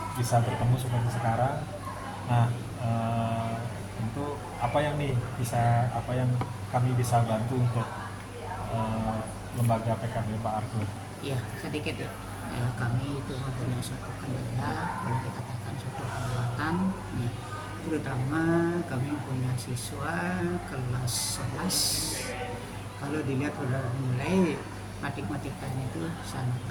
bisa bertemu seperti sekarang. Nah, eh, tentu apa yang kami bisa bantu untuk eh, lembaga PKB Pak Argo. Iya, sedikit ya. Kami itu mempunyai suatu kendala, kalau dikatakan suatu hambatan, ya. Terutama kami punya siswa kelas 11. Kalau dilihat sudah mulai matematikanya itu sangat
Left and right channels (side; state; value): both; identical; correlation 1.00